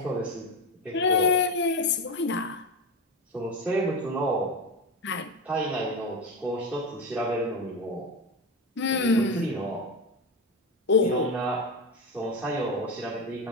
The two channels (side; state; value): both; normal; correlation 0.18